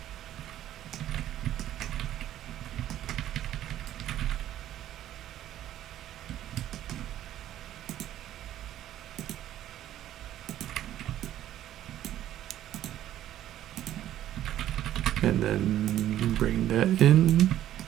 And then bring that in.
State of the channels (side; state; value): left; quieter; 12.4 dB